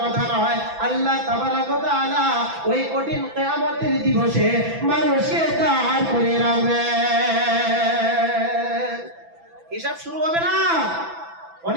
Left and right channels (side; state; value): left; late; 6.0 ms